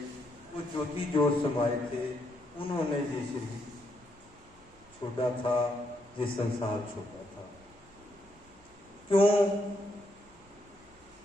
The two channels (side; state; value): right; noise; rumble, 27 dB below the sound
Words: वो ज्योति जोत समाये थे। उन्होंने ये शरीर छोड़ा था, ये संसार छोड़ा था। क्यों